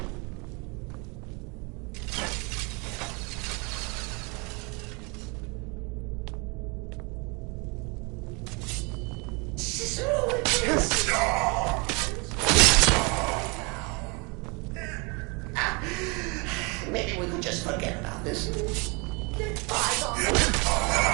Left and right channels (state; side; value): quieter; left; 30.1 dB